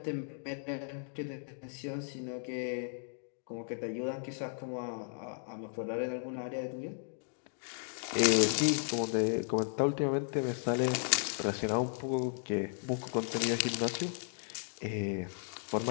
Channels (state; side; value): silent; right; digital silence